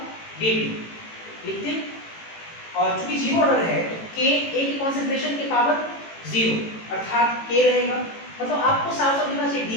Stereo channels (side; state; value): right; late; 18 ms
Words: डीटी लिखते, और चूंकि जीरो ऑर्डर है तो के ए की कॉन्सेंट्रेशन के पावर जीरो अर्थात के रहेगा। मतलब आपको साफ साफ लिखना चाहिए